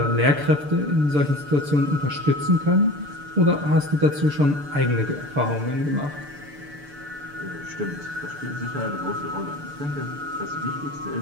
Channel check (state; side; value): late; left; 6.8 ms